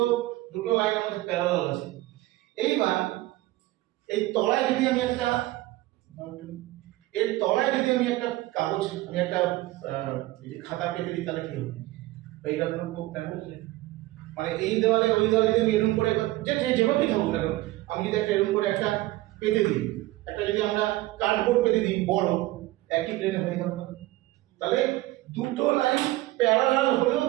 দুটো লাইন আমাদের প্যারালাল আছে, এইবার এই তলায় যদি আমি একটা কাগজ, আমি একটা খাতা পেতে দিই, তাহলে কি হবে? এইটা হলো কোপ্ল্যানার। মানে এই দেওয়ালে ওই দেওয়ালে যদি আমি এরকম করে যেভাবেই থাকুক না কেন, আমি যদি একটা এরকম করে একটা পেতে দিই, একটা যদি আমরা কার্ডবোর্ড পেতে দিই বড়, একই প্লেনে হয়ে গেল না? তাহলে দুটো লাইন প্যারালাল হলেও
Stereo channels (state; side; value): quieter; left; 18.0 dB